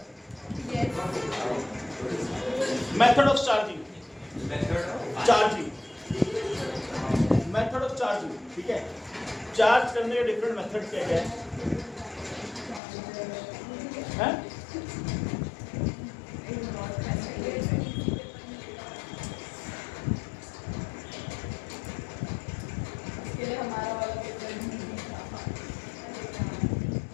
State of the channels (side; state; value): right; drops out; at 12.8 s